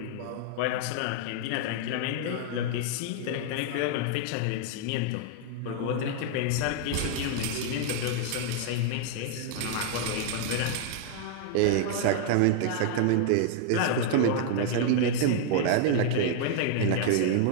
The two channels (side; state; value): both; different; correlation 0.00